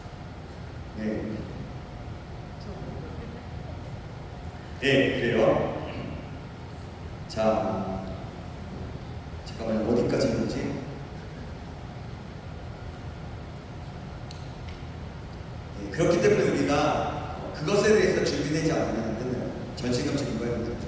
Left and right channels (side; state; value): both; identical; correlation 1.00